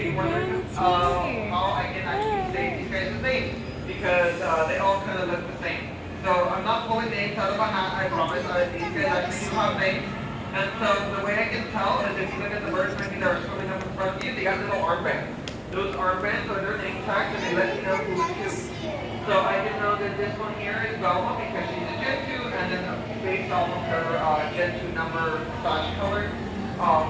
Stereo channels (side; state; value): both; identical; correlation 1.00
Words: wondering how I can actually say these guys' names, because they all kind of look the same. So I'm not pulling names out of a hat, I promise. These guys actually do have names. And so the way I can tell is if you look at the birds maybe that are swimming up in front of you, they got little armbands. Those armbands are their name tags, and they let you know who's who. So I can know that this one here is Velma because she's a Gen 2, and then based off of her Gen 2 number / color,